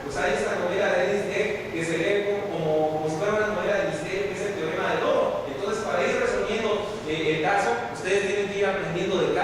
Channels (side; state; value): both; identical; correlation 1.00